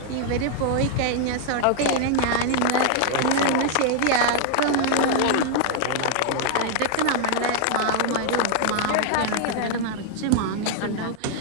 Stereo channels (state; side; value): different; both; correlation 0.00